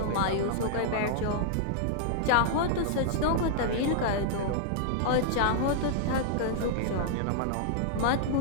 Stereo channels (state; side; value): different; both; correlation -0.01